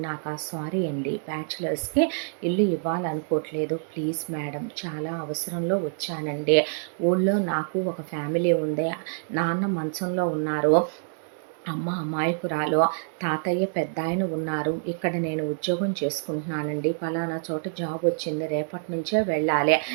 సారీ అండి, బ్యాచులర్స్కి ఇల్లు ఇవ్వాలనుకోవట్లేదు, ప్లీజ్ మేడం, చాలా అవసరంలో వచ్చానండి. ఊళ్ళో నాకు ఒక ఫ్యామిలీ ఉంది, నాన్న మంచంలో ఉన్నారు, అమ్మ అమాయకురాలు, తాతయ్య పెద్ద ఆయన ఉన్నారు. ఇక్కడ నేను ఉద్యోగం చేసుకుంటున్నానండి, పలానా చోట జాబ్ వచ్చింది, రేపటి నుంచే వెళ్ళాలి.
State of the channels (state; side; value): silent; left; digital silence